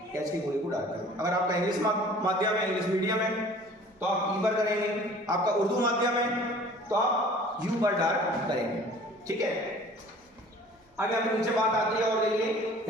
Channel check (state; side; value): normal; both; correlation 0.48